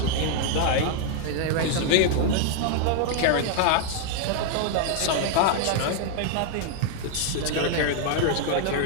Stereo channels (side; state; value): both; different; correlation 0.00